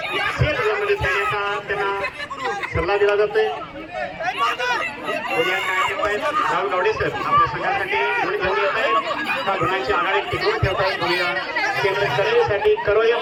मध्ये खेळण्याचा त्यांना सल्ला दिला जातोय. राहुल गावडे सर आपल्या संघासाठी गुण घेऊन येत आहेत. त्या गुणांची आघाडी टिकवून ठेवत आहेत. बघूया केंद्र करेसाठी करो या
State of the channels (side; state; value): both; identical; correlation 1.00